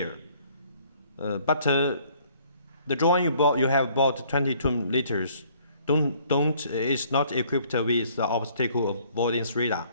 But the drone you have bought 22 liters is not equipped with the obstacle avoidance radar.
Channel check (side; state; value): both; inverted; correlation -0.60